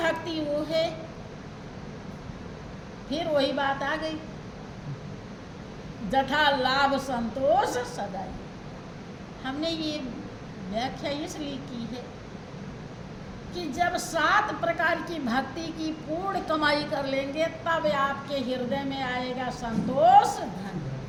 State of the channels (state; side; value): identical; both; correlation 1.00